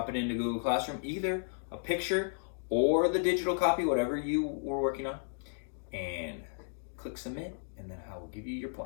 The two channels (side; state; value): right; silent; digital silence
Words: it into Google Classroom, either a picture or the digital copy, whatever you were working on, and click submit, and then I will give you your